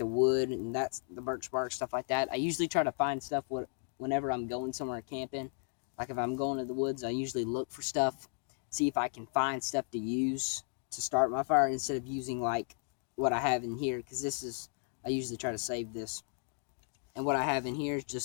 wood and that's the birch bark, stuff like that. I usually try to find stuff whenever I'm going somewhere camping. Like if I'm going to the woods, I usually look for stuff, see if I can find stuff to use to start my fire instead of using like what I have in here, because I usually try to save this. And what I have in here is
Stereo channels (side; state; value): right; silent; 55 dB below the other